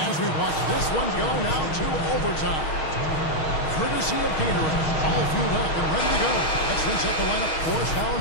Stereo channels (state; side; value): late; right; 6.4 ms